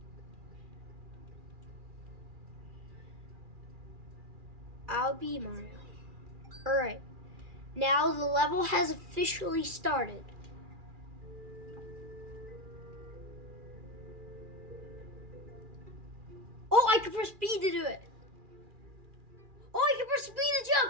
I'll be Mario. Alright. Now the level has officially started. Oh, I can press B to do it. Oh, I can press B to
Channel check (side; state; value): left; late; 2.4 ms